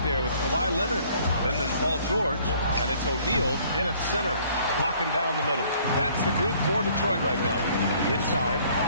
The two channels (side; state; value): both; inverted; correlation -0.59